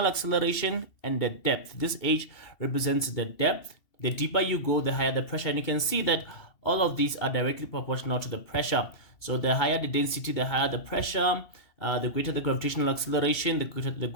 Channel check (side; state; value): right; late; 2.7 ms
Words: acceleration, and the depth. This H represents the depth. The deeper you go, the higher the pressure. And you can see that all of these are directly proportional to the pressure. So the higher the density, the higher the pressure. The greater the gravitational acceleration, the